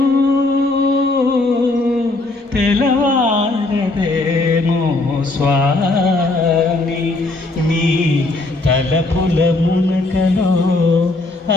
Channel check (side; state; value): right; quieter; 3.0 dB